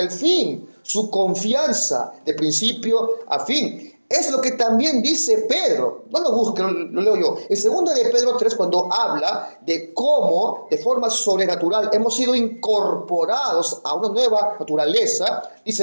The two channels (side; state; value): both; inverted; correlation -1.00